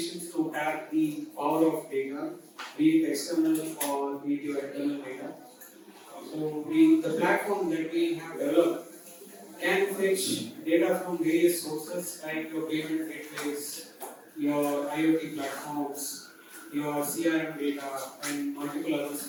to tap the power of data, be it external or be it your internal data. So the platform that we have developed can fetch data from various sources like your payment gateways, your IoT platforms, your CRM data, and multiple other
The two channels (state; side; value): identical; both; correlation 1.00